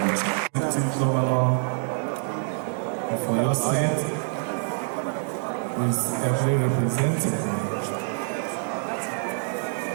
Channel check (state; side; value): silent; left; digital silence